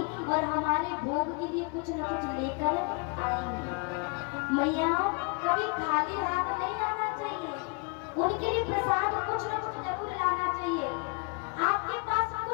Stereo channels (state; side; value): quieter; right; 32.3 dB